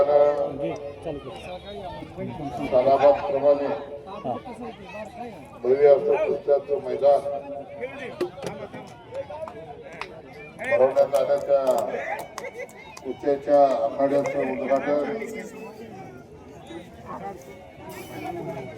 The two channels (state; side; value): identical; both; correlation 1.00